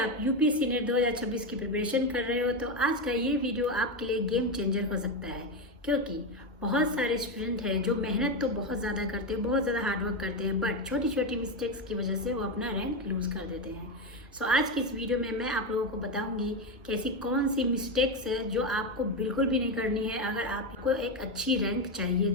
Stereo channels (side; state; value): both; normal; correlation 0.12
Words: आप UPSC net 2026 की preparation कर रहे हो तो आज का ये वीडियो आपके लिए गेम चेंजर हो सकता है, क्योंकि बहुत सारे स्टूडेंट हैं जो मेहनत तो बहुत ज़्यादा करते हैं, बहुत ज़्यादा हार्डवर्क करते हैं, बट छोटी छोटी मिस्टेक्स की वजह से वो अपना रैंक लूज़ कर देते हैं। सो आज की इस वीडियो में मैं आप लोगों को बताऊंगी कि ऐसी कौन सी मिस्टेक्स है जो आपको बिल्कुल भी नहीं करनी है अगर आपको एक अच्छी रैंक चाहिए